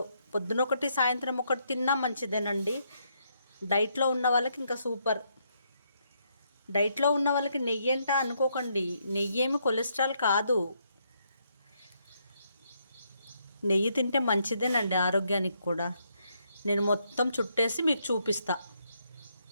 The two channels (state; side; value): inverted; both; correlation -0.76